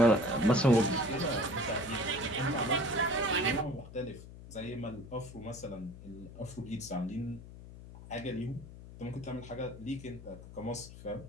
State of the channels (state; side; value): noise; left; hum, 15 dB below the sound